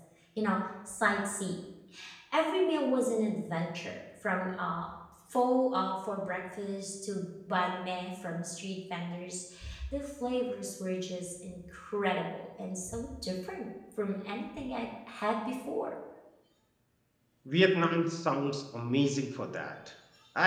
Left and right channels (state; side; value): identical; both; correlation 1.00